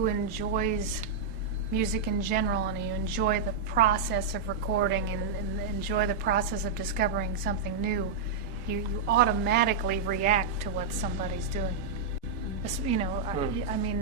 enjoys music in general, and you enjoy the process of recording and enjoy the process of discovering something new, you automatically react to what somebody's doing. You know, I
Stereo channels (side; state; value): left; quieter; 4.9 dB